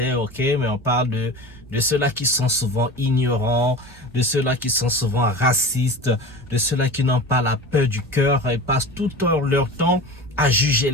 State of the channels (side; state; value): both; normal; correlation 0.33